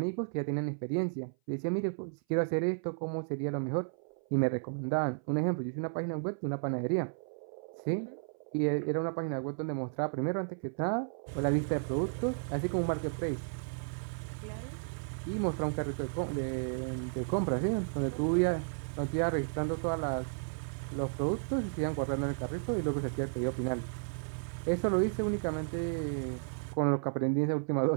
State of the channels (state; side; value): silent; left; 55 dB below the other